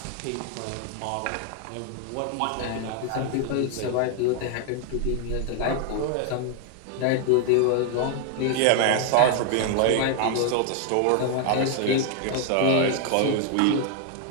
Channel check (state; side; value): different; both; correlation 0.00